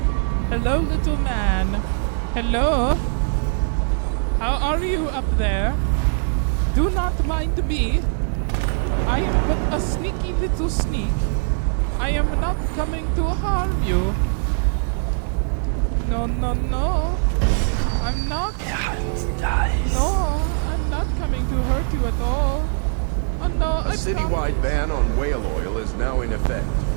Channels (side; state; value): left; silent; digital silence